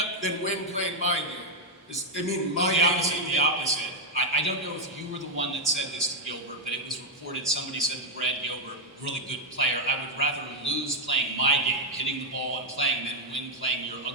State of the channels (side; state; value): both; normal; correlation 0.00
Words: than win playing my game. The opposite. I don't know if you were the one that said this to Gilbert, but it was reported somebody said to Brad Gilbert, really good player, I would rather lose playing my game, hitting the ball and playing, than win playing your